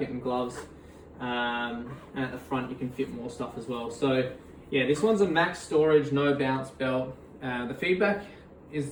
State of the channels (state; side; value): identical; both; correlation 1.00